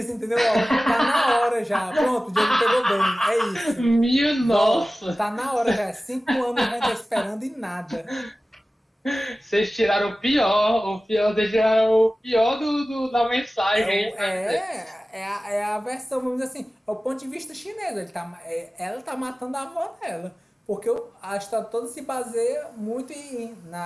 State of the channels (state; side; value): normal; both; correlation 0.97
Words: entendeu? Tá na hora já. Pronto, o Diego pegou bem. É isso. Minha nossa! Tá na hora já. 5 anos a gente tá esperando e nada. Vocês tiraram vocês tiraram o pior da mensagem. É a versão, vamos dizer assim, é o ponto de vista chinês. Ela tá matando a avó dela. Porque a história toda se baseia muito